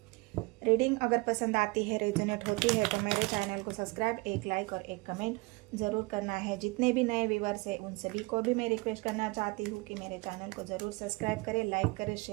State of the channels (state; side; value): quieter; left; 25.7 dB